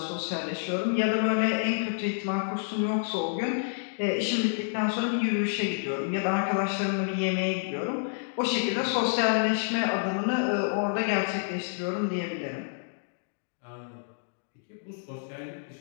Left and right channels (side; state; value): right; silent; digital silence